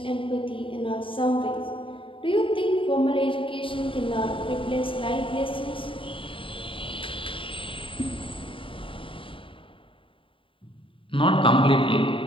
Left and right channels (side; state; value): right; late; 0.25 ms